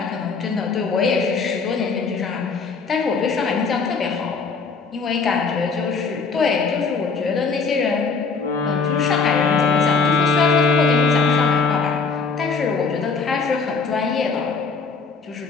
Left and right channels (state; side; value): quieter; right; 5.0 dB